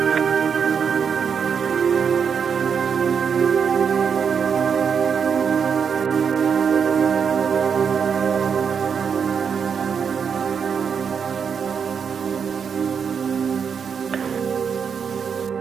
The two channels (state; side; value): quieter; left; 6.7 dB